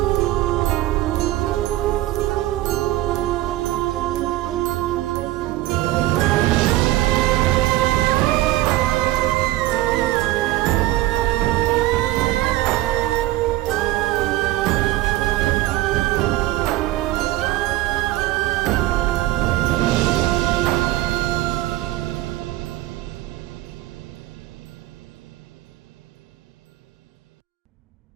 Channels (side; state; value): left; quieter; 16.6 dB